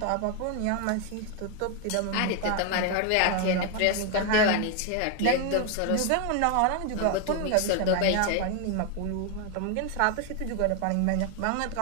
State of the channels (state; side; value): different; both; correlation 0.01